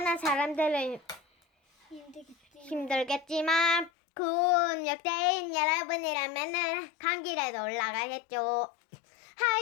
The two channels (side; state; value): right; drops out; at 3.9 s